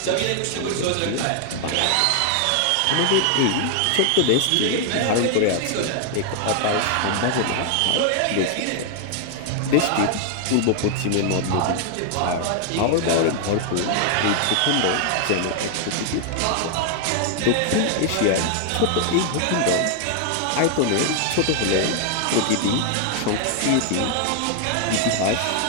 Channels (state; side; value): different; both; correlation 0.00